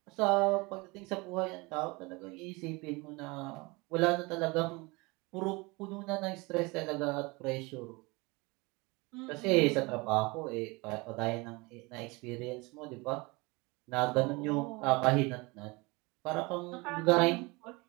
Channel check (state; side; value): quieter; left; 25.5 dB